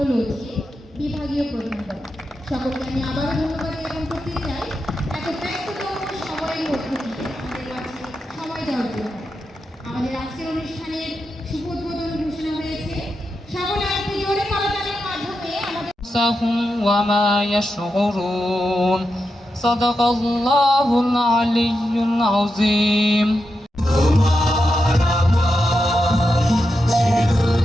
বিভাগীয় প্রধান। সকলকে আমি আবারও ধন্যবাদ জ্ঞাপন করতে চাই এত ব্যস্ততম সময়ের মধ্যে দিয়ে আমাদের কাছে সময় দেওয়ার জন্য। আমাদের আজকের অনুষ্ঠানের শুভ উদ্বোধন ঘোষণা হয়েছে। সকলে একটু জোরে করতালির মাধ্যমে আমাদের وما يشعرون صدق الله العلي العظيم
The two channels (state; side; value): normal; both; correlation 0.88